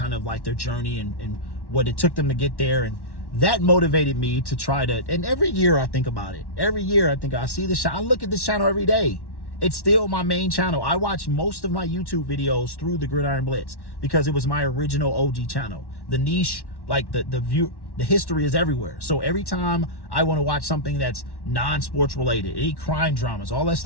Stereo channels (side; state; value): right; late; 1.1 ms